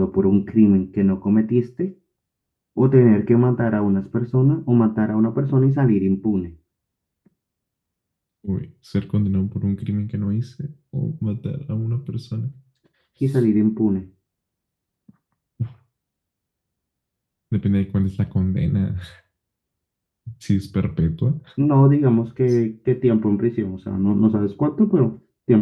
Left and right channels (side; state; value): both; identical; correlation 1.00